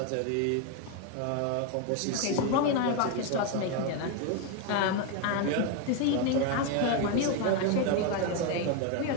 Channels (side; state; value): both; different; correlation 0.02